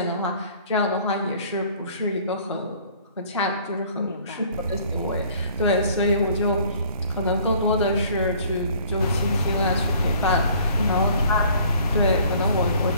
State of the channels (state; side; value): inverted; both; correlation -0.55